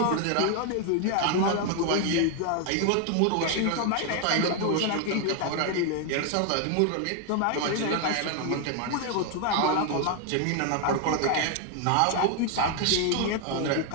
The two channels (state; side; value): different; both; correlation 0.00